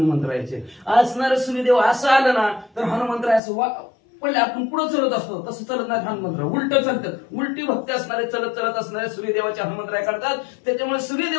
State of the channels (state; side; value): drops out; right; at 3.4 s